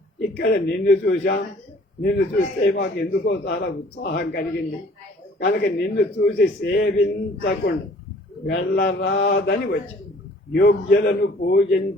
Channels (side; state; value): both; normal; correlation 0.54